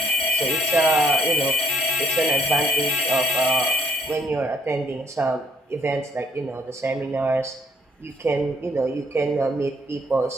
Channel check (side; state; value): both; normal; correlation 0.63